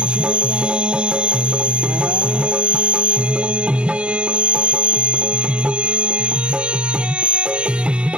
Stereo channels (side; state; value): left; late; 0.056 ms